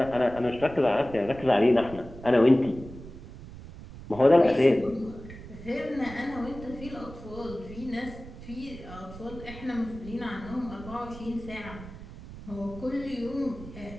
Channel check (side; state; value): right; noise; rumble, 14 dB below the sound